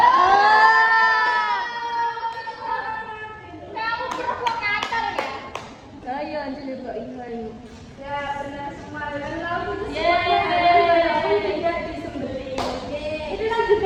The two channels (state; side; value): identical; both; correlation 1.00